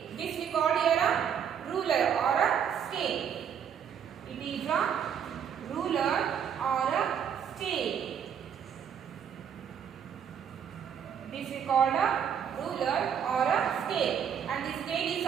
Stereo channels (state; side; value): quieter; left; 8.1 dB